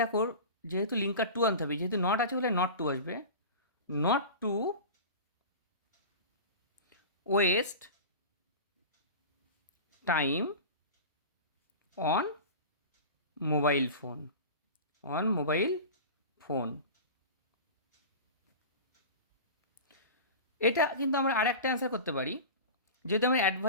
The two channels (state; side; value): inverted; both; correlation -0.32